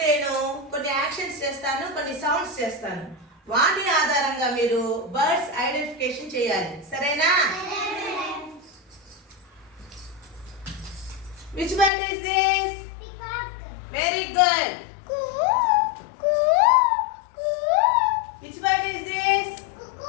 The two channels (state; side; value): drops out; right; at 11.9 s